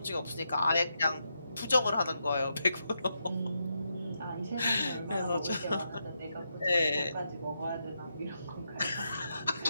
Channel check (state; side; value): inverted; both; correlation -0.83